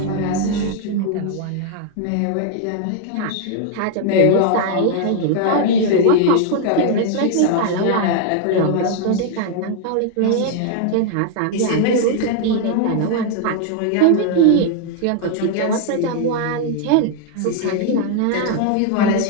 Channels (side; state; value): both; different; correlation 0.00